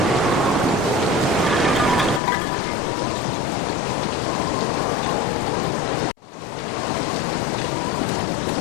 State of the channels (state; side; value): drops out; right; at 2.2 s